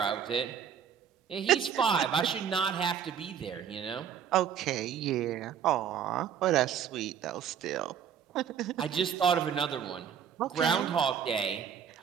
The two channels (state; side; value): quieter; left; 8.3 dB